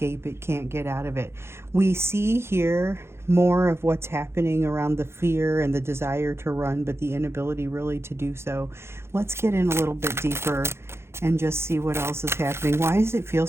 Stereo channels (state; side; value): late; left; 0.12 ms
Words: it, can't get out of it. We see here more of what's happening around the fear and the desire to run, but the inability really to do so. Let's get in a little bit deeper and just see what else is happening. Why does it feel